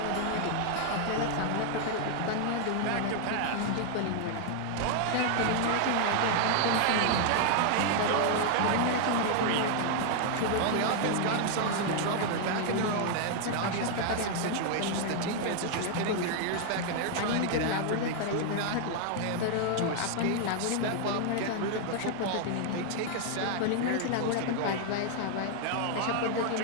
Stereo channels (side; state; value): both; different; correlation 0.00